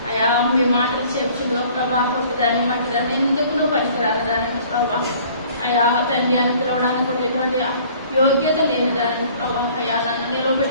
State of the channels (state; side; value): inverted; both; correlation -0.53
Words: అయా మీ మాటలు చెప్పుచులో ప్రభా దాన్ని మట్టి దాన్ని ఎందుకు పనికిరాని దానిని ప్రభా అయా తండ్రి అని పిలవడానికి కూడా ఎటువంటి యోగ్యత లేని దానిని ప్రభా అయా నన్ను